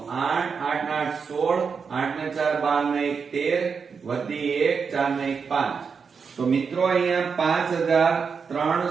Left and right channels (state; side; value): quieter; left; 5.8 dB